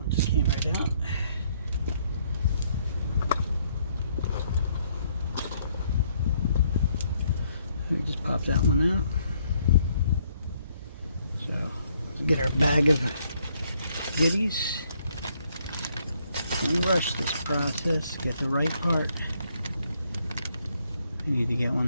just came right out. We just pop that one out. So let's get our bag of goodies and rush this process. Get the right part. We need to get one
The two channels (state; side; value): inverted; both; correlation -0.69